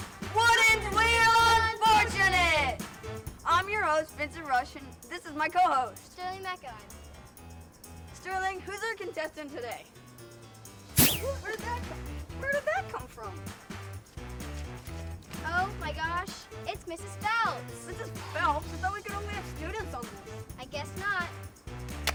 Wheel Unfortunate! I'm your host, Vincent Rush, and this is my co-host, Sterling McEwen. Sterling. Who's our contestant today? Where did that come from? Oh my gosh, it's Mrs. Phelps. Mrs. Phelps? I thought we could only have students on this. I guess not.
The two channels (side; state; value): both; identical; correlation 1.00